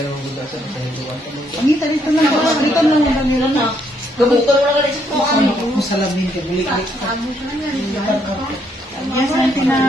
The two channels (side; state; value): both; normal; correlation 0.72